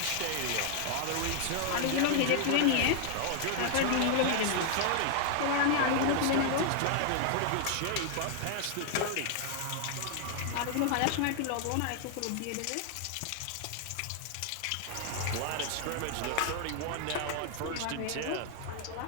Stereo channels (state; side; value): different; both; correlation 0.00